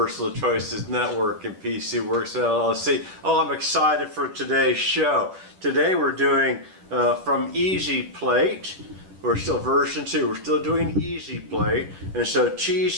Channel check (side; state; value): left; late; 10 ms